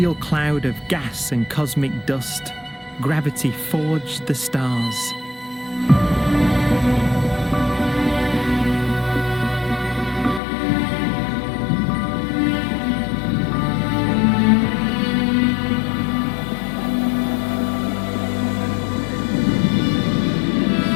cloud of gas and cosmic dust, gravity forged the stars.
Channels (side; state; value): right; drops out; at 10.4 s